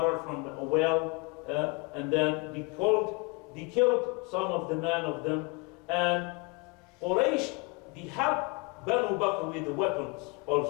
from a well, and then they killed some of the men of them, and Quraysh, they helped Banu Bakr with the weapons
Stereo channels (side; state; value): right; quieter; 28.8 dB